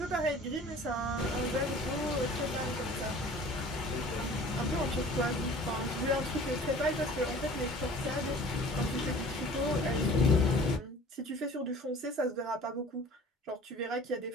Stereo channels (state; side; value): normal; both; correlation 0.46